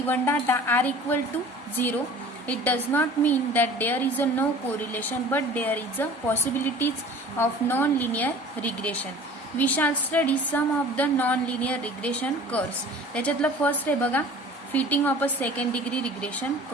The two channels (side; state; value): both; normal; correlation 0.44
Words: data r equal to 0, it does not mean that there is a no correlation but there is a possibilities of non-linear regression. We shall study some of the non-linear regression curves. त्याच्यातलं first आहे बघा, fitting of a second degree regression